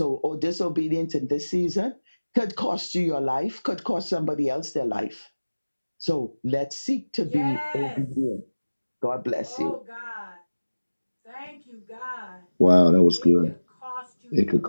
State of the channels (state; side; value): inverted; both; correlation -1.00